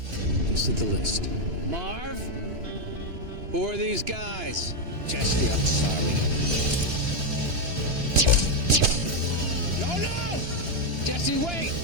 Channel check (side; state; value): left; late; 3.0 ms